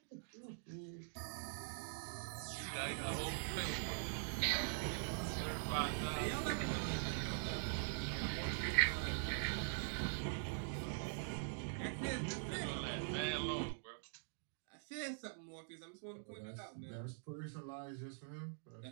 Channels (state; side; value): silent; left; digital silence